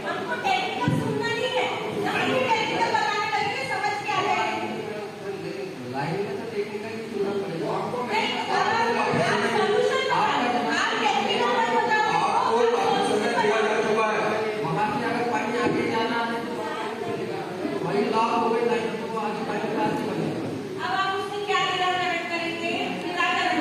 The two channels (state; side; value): identical; both; correlation 1.00